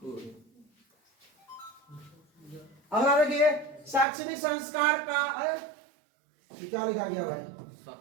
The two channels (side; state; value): left; drops out; at 4.0 s